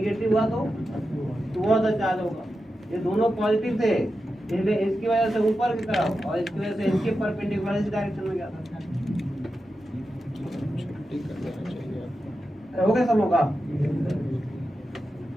हुआ तो टुवर्ड द चार्ज होगा। ये दोनों पॉजिटिव थे इसलिए इसकी वजह से ऊपर की तरफ और इसकी वजह से इसके परपेंडिकुलर इस डायरेक्शन में गया था। हो गया सब लोगों का?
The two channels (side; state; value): both; normal; correlation 0.90